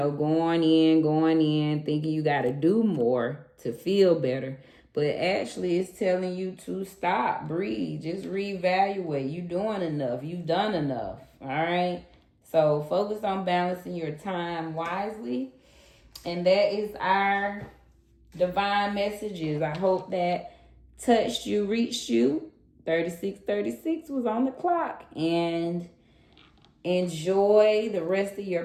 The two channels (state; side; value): identical; both; correlation 1.00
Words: thinking you got to do more to feel better. But actually it's telling you to stop, breathe, just reevaluate. You doing enough. You've done enough. All right. So focus on balancing your time wisely. And that is our divine messages. I hope that touched you, reached you. 3636 was on the clock. And enjoy the rest of